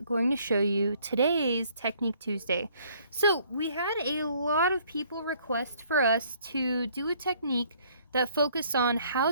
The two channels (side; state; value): both; inverted; correlation -0.62